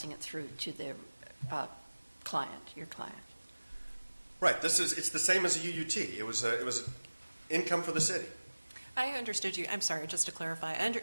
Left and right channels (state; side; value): inverted; both; correlation -1.00